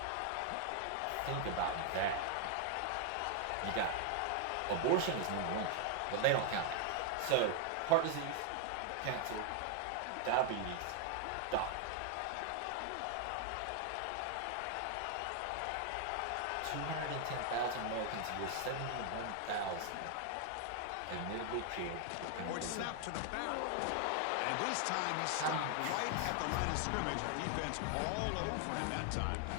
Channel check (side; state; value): both; different; correlation 0.00